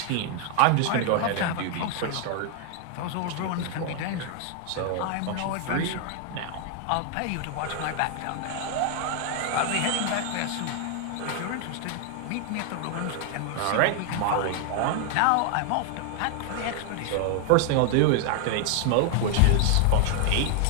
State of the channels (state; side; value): different; both; correlation 0.00